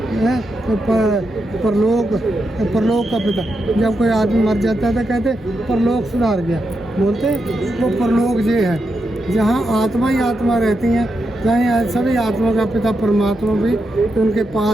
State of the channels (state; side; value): normal; both; correlation 0.85